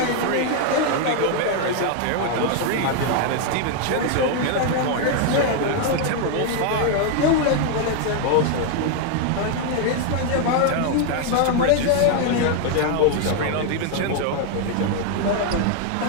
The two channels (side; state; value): both; different; correlation 0.00